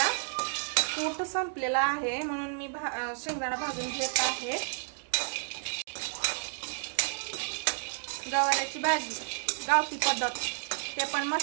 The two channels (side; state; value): left; silent; digital silence